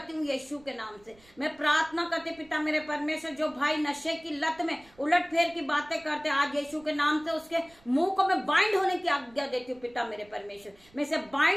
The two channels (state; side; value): noise; right; rumble, 28 dB below the sound